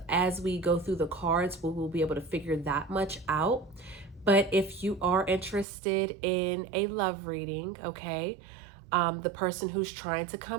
As we go through the cards, we will be able to figure that much out. But if you are interested in a love reading, okay, the person who's trying to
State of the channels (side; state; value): left; drops out; at 5.7 s